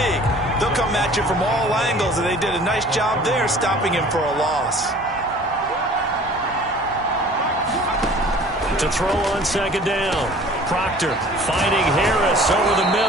They'll come at you from all angles, and they did a nice job there stopping him for a loss. To throw on second down. Proctor finding Harris over the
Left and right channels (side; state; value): both; normal; correlation 0.48